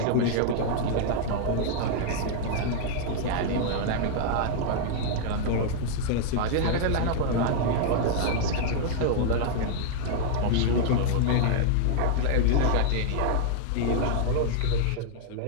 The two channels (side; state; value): both; different; correlation -0.01